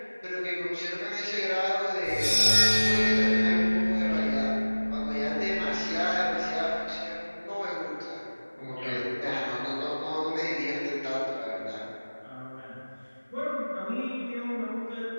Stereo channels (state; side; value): inverted; both; correlation -1.00